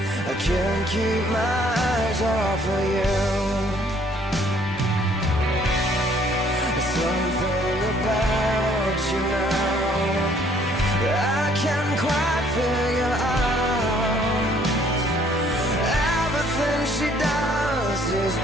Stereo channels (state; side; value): normal; both; correlation 0.62